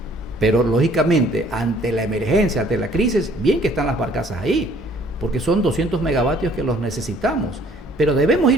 pero lógicamente, ante la emergencia, ante la crisis, bien que están las barcazas ahí, porque son 200 megavatios que los necesitamos. Pero debemos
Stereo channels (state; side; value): normal; both; correlation 0.58